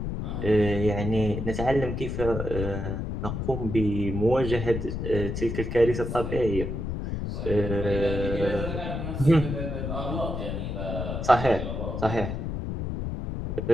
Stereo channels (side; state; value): left; noise; rumble, 4 dB below the sound